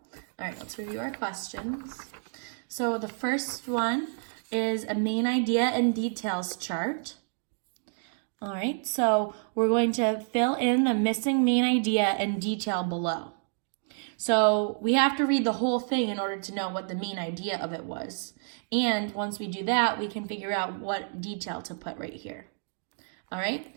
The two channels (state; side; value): silent; left; digital silence